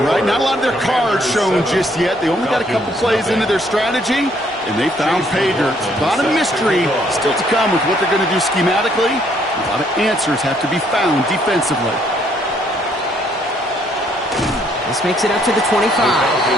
right? Not a lot of their cards shown just yet. They only got a couple plays into their strategy, and they found pay dirt. A lot of mystery still to come with what they're going to do schematically. A lot of answers have to be found defensively. This makes it up to the 25. The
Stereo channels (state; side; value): normal; both; correlation 0.67